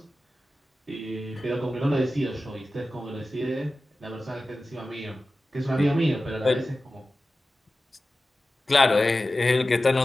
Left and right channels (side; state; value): both; normal; correlation 0.95